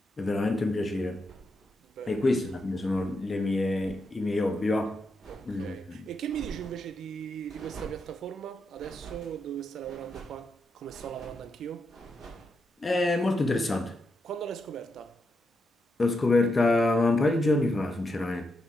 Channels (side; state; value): both; normal; correlation 0.83